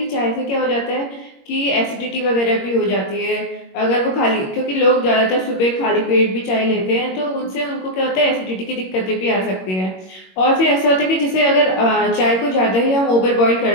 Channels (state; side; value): late; right; 21 ms